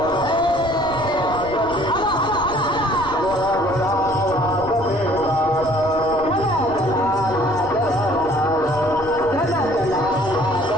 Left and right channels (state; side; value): noise; left; rumble, 16 dB below the sound